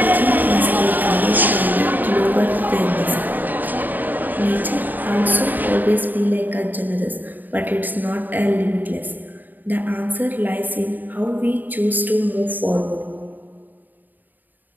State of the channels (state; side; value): late; left; 0.087 ms